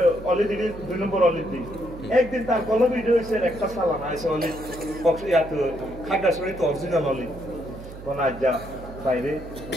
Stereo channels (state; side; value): noise; right; hum, 14 dB below the sound